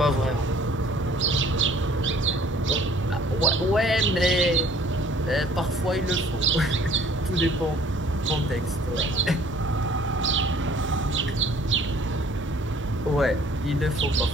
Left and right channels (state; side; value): normal; both; correlation 0.55